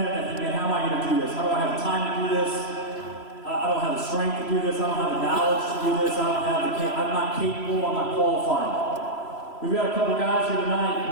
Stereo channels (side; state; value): right; late; 3.0 ms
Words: they think, man, how am I going to do this? How do I have time to do this? I don't have the strength to do this. I don't have the knowledge to do this. I'm not capable. I'm not qualified. We've got a couple guys here tonight